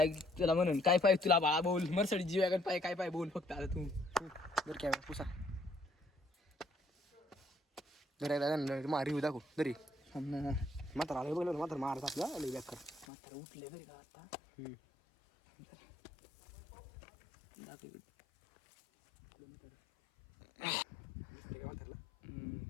तुला म्हणून काय पाहिजे तुला बाळा बोल मरसडी जीवागण पाय काय पाय बोल फक्त आता तू बरं काय पुसा दर मा रिव्ह्यू दाखव दरी म्हातारा आलं बघलं म्हातारा मारत आपला लई बॅक कर मात्र उठले बरे का आता दाखव इकडे.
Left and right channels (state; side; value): drops out; right; at 13.1 s